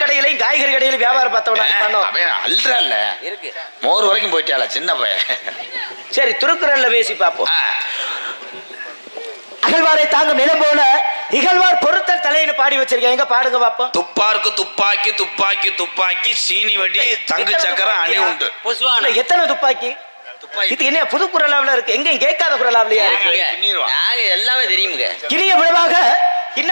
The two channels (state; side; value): inverted; both; correlation -1.00